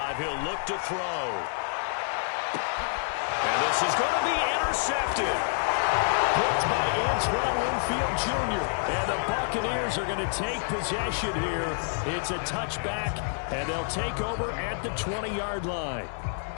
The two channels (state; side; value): silent; right; digital silence